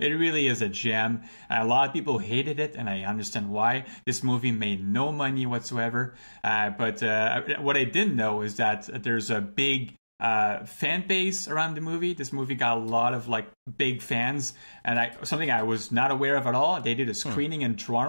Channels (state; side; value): inverted; both; correlation -1.00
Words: gem. A lot of people hated it, and I understand why. This movie made no money whatsoever. But what I didn't know is that there's a big fan base around the movie. This movie got a lot of like big fans, and something I was not aware of at all. They did a screening in